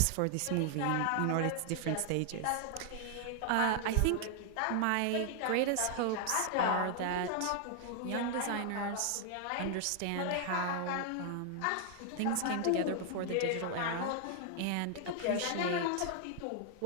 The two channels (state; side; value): different; both; correlation 0.00